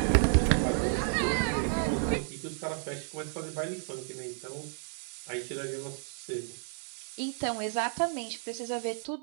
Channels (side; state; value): left; silent; 56 dB below the other